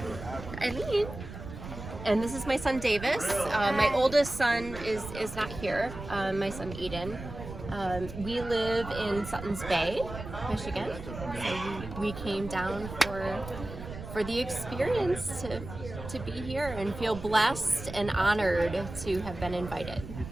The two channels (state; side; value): noise; right; rumble, 11 dB below the sound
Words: And this is my son, Davis. My oldest son is not here, my son, Eden. We live in Suttons Bay, Michigan. So we came down for the experience to be here and feel blessed and honored to have been invited.